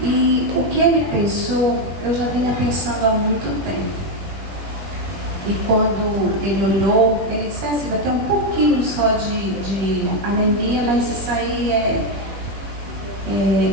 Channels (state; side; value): late; left; 21 ms